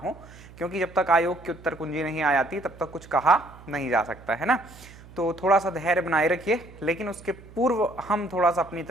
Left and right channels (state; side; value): noise; right; hum, 20 dB below the sound